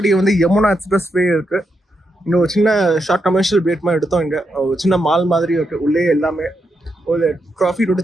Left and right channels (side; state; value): both; normal; correlation 0.83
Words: வந்து யமுனா எக்ஸ்பிரஸ் வே இருக்கு. இன்னும் ஒரு சின்ன ஷார்ட் கமர்ஷியல் பிரேக் மாதிரி எடுத்தோம். இங்கே ஒரு சின்ன மால் மாதிரி இருக்கு. உள்ளே எல்லாமே ஒரு ட்ராஃபி